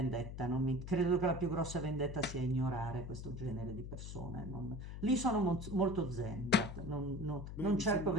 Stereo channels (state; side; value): noise; left; hum, 8 dB below the sound